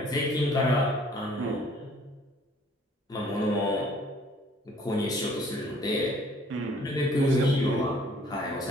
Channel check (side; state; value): both; normal; correlation 0.57